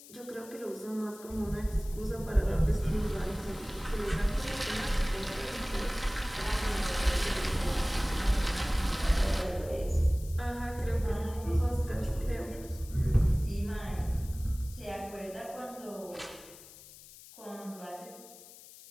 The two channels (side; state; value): left; noise; hiss, 19 dB below the sound